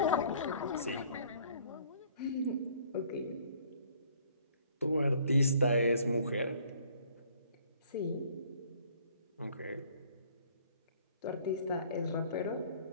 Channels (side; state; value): both; inverted; correlation -0.58